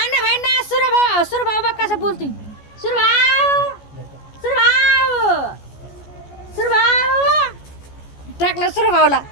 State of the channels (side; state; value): right; late; 14 ms